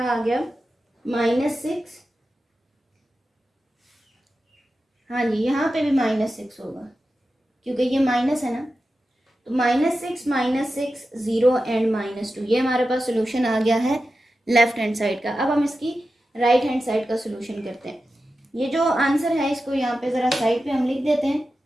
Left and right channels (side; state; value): both; normal; correlation 0.92